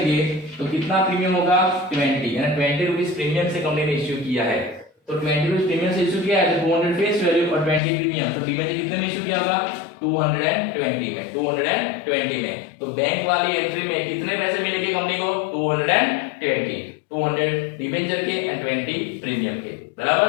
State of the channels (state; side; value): drops out; right; at 7.8 s